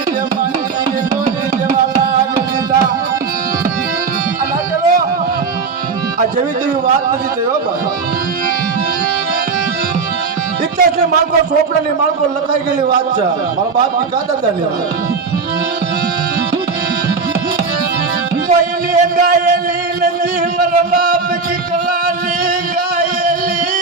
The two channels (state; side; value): quieter; left; 4.9 dB